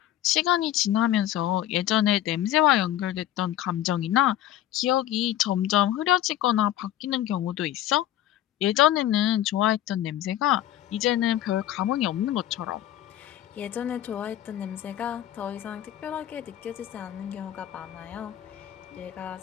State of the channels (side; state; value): right; quieter; 12.6 dB